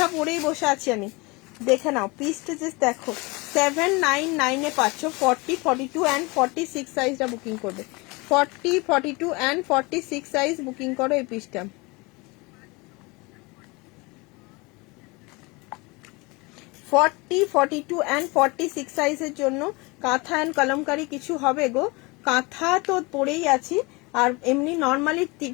পরেই বসে আছি আমি। দেখে নাও পিসটা জাস্ট দেখো 799 এ পাচ্ছ 40, 42 অ্যান্ড 46 সাইজটা বুকিং করবে। 40, 42 অ্যান্ড 46 সাইজ বুকিং করো এই পিসটা। 40, 42 অ্যান্ড 46 সাইজের জন্য কাঁথা অ্যান্ড কলমকারি কিছু হবে গো। কাঁথা তো পরেই আছি, আর এমনি নর্মালি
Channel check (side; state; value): right; quieter; 26.1 dB